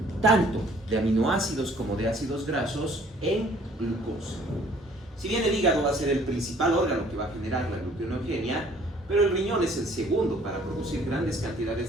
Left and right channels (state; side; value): normal; both; correlation 0.57